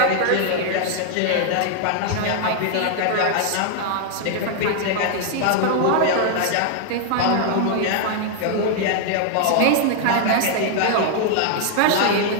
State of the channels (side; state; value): both; different; correlation 0.00